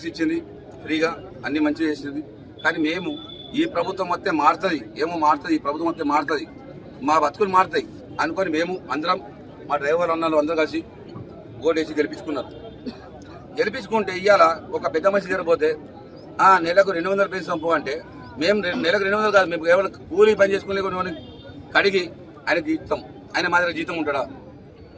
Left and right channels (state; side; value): identical; both; correlation 1.00